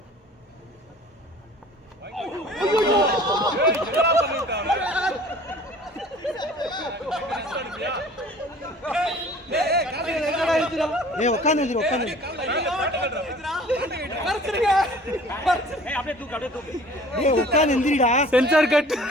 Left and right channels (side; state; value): both; normal; correlation 0.49